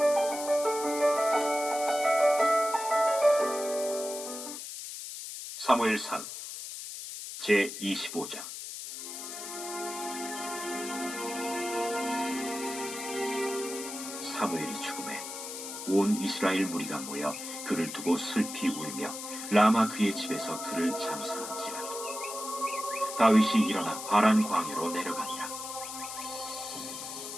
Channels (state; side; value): noise; left; hiss, 8 dB below the sound